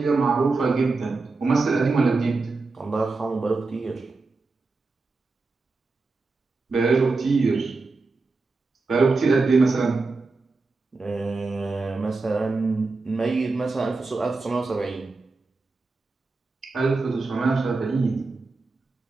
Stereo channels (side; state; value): left; quieter; 3.8 dB